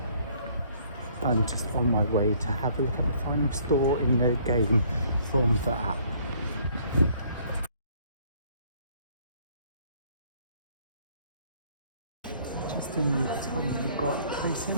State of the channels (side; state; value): both; inverted; correlation -0.62